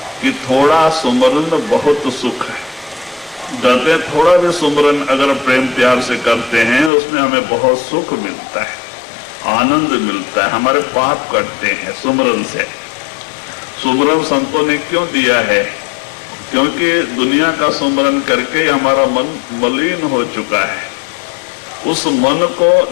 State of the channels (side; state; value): right; drops out; at 6.9 s